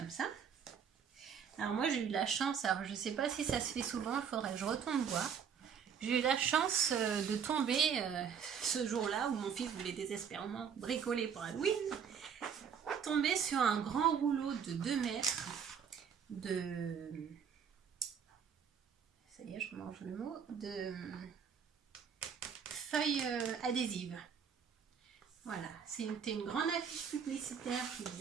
ça. Alors moi j'ai eu la chance, alors je ne sais pas si ça se fait souvent, il faudrait que je retourne voir. J'ai eu la chance de tomber ce jour-là où mon fils voulait désespérément bricoler pour Halloween, tomber sur un grand rouleau de 2 mètres de... Ça y est, je mange le mot, de feuilles adhésives. Voilà, c'était une grande affiche publicitaire qui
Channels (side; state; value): left; quieter; 7.3 dB